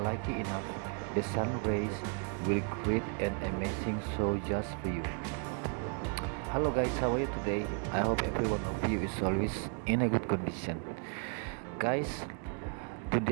lucky enough, the sun rays will create an amazing show just for you. Hello guys, how are you today? I hope every one of you is always in a good condition. Guys,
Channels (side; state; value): left; quieter; 39.6 dB